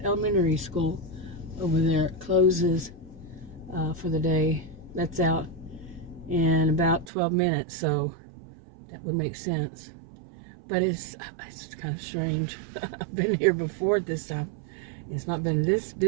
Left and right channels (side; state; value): left; drops out; at 7.1 s